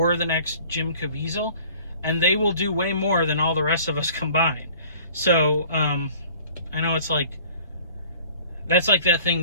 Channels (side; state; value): both; inverted; correlation -0.50